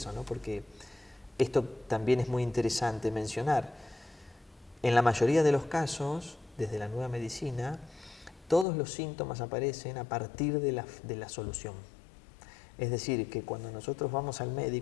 ¿no? Porque esto también es muy interesante mencionar. En la mayoría de los casos, desde la nueva medicina, todos los síntomas aparecen a partir de la solución. Es decir, que cuando nosotros vamos al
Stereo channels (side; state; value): right; drops out; at 8.7 s